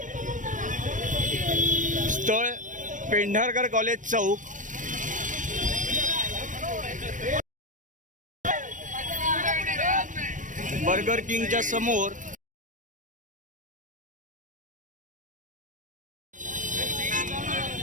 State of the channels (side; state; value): left; late; 0.37 ms